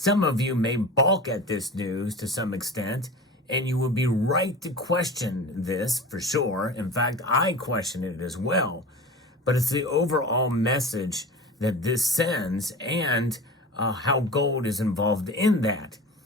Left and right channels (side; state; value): both; normal; correlation 0.34